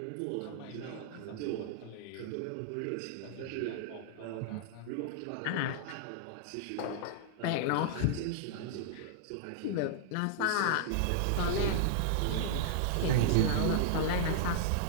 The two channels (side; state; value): both; different; correlation -0.01